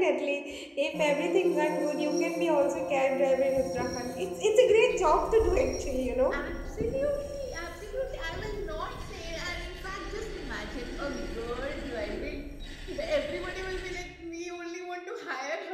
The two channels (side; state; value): both; identical; correlation 1.00